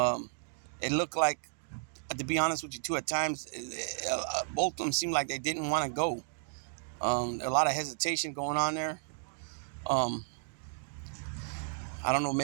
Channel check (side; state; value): left; silent; digital silence